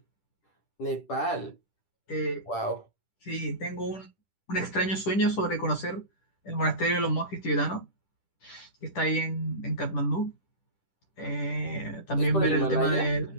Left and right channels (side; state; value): right; late; 10 ms